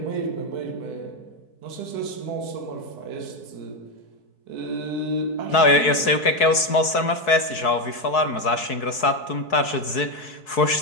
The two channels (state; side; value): late; right; 4.6 ms